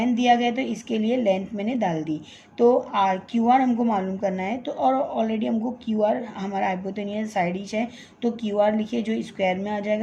दिया गया तो इसके लिए लेंथ मैंने डाल दी, तो आर क्यू आर हमको मालूम करना है, तो और ऑलरेडी हमको क्यू आर हमारा हाइपोटेनियस साइड ही है, तो क्यू आर लिखिए जो स्क्वायर में आ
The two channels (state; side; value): identical; both; correlation 1.00